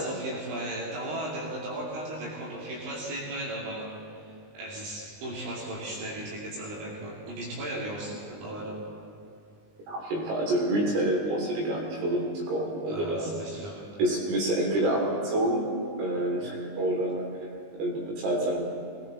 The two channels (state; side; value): late; left; 20 ms